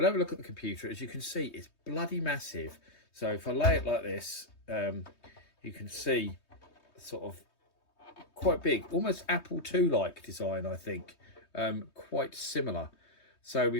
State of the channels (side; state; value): right; late; 3.2 ms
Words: have a look at the computer. As you can see, it's bloody massive. So if I lay it like this, you can see sort of quite big, almost Apple II like design, I think. Quite similar. So